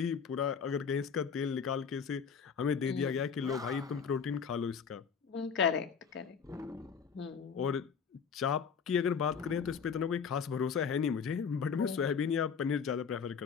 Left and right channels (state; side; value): quieter; right; 6.5 dB